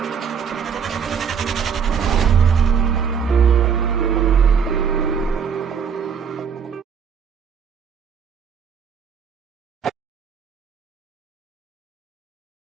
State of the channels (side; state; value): left; quieter; 6.9 dB